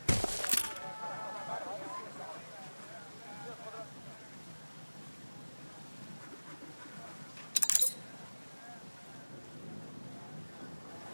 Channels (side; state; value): both; inverted; correlation -1.00